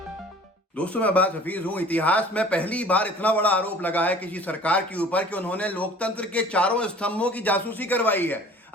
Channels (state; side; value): normal; both; correlation 0.48